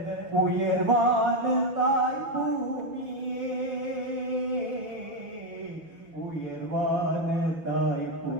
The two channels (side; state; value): left; late; 6.1 ms